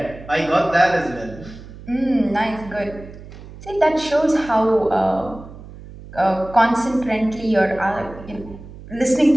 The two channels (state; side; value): noise; right; hum, 16 dB below the sound